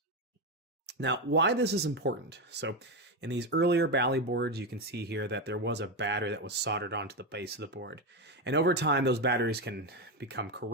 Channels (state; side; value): normal; both; correlation 0.12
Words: Now, why this is important? So in these earlier Bally boards, you can see here that there was a battery that was soldered onto the base of the board. And over time, those batteries can become